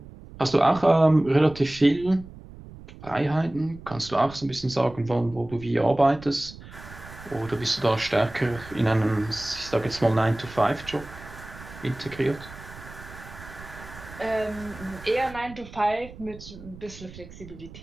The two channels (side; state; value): right; noise; rumble, 17 dB below the sound